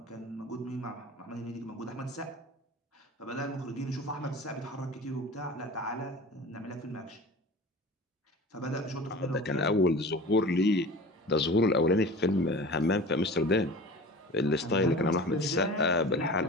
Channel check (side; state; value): both; normal; correlation 0.37